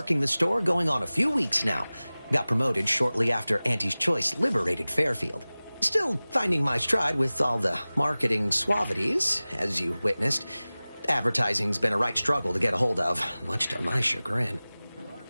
the store going on a few weeks now. Got promoted shortly after Auntie's Choice liberated Fairfield. Still finding my stride with all the marketing suavities, as you witnessed. Advertising's been a right struggle to get a hold of, much to my chagrin.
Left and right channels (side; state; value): both; inverted; correlation -0.98